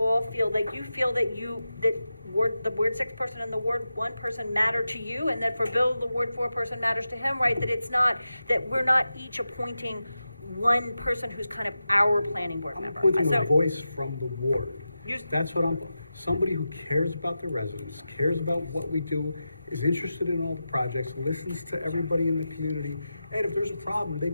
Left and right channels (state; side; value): inverted; both; correlation -0.91